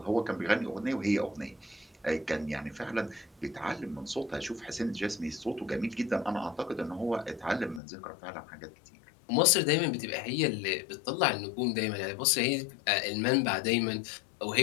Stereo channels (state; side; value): drops out; right; at 7.8 s